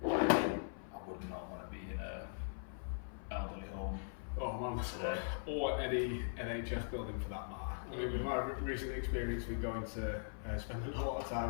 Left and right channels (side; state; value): right; silent; 51 dB below the other